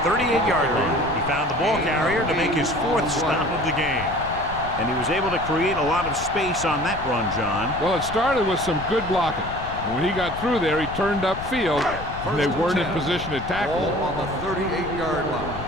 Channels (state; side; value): noise; left; rumble, 11 dB below the sound